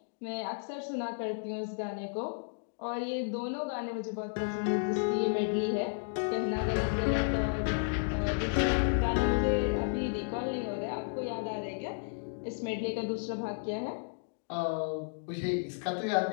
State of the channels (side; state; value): right; silent; digital silence